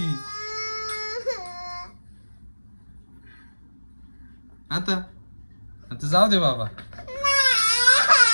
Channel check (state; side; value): inverted; both; correlation -1.00